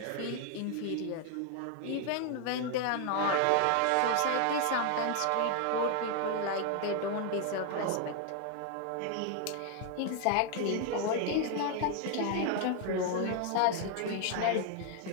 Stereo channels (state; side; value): different; both; correlation 0.01